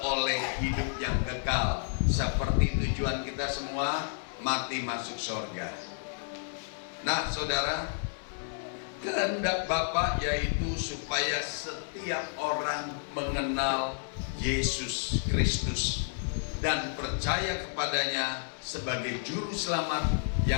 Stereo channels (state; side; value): silent; right; digital silence